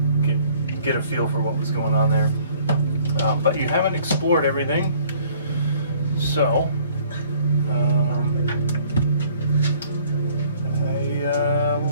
get a feel for what was going on there. But you haven't explored everything, so I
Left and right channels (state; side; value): inverted; both; correlation -0.57